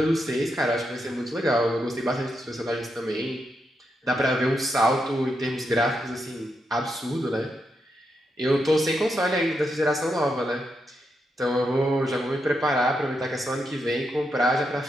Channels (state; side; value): normal; both; correlation 0.83